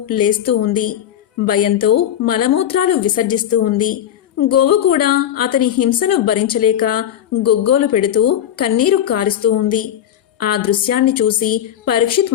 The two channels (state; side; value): quieter; right; 10.7 dB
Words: లేస్తూ ఉంది. భయంతో మలమూత్రాలు విసర్జిస్తూ ఉంది. గోవు కూడా అతని హింసను భరించలేక గొగ్గోలు పెడుతూ కన్నీరు కారుస్తూ ఉంది. ఆ దృశ్యాన్ని చూసి